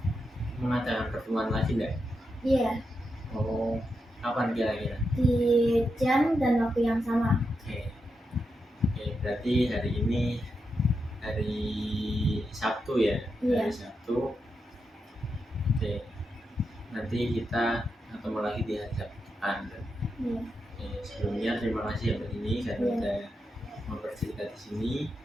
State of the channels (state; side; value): normal; both; correlation 0.86